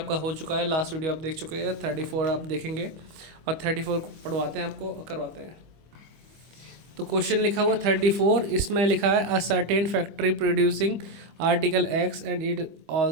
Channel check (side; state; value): left; late; 25 ms